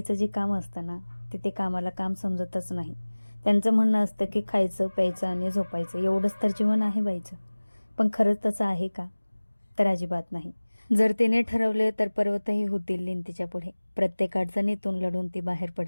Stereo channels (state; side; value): inverted; both; correlation -1.00